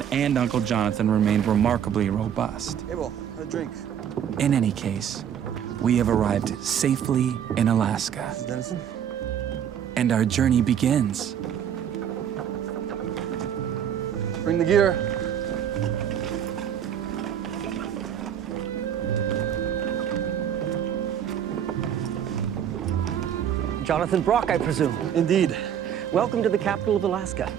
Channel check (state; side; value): quieter; left; 9.1 dB